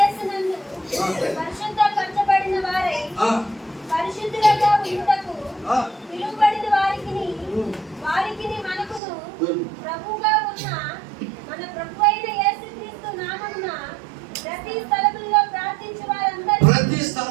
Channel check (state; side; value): drops out; left; at 9.0 s